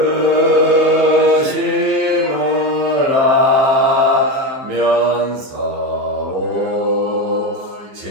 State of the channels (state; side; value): late; left; 15 ms